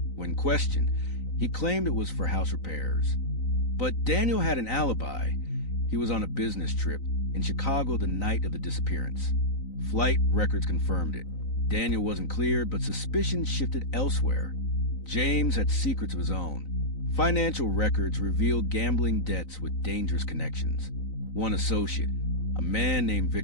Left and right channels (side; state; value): right; late; 3.9 ms